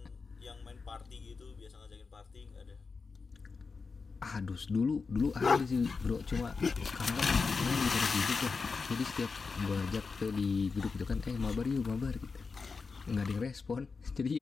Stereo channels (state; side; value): quieter; right; 4.7 dB